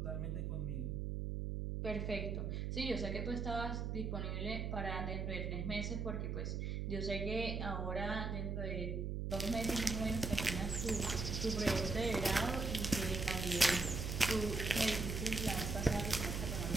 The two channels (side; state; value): right; noise; hum, 2 dB below the sound